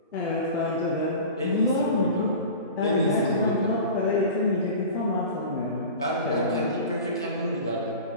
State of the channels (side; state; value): both; inverted; correlation -0.35